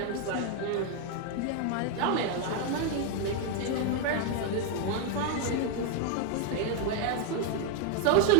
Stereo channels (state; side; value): different; both; correlation 0.01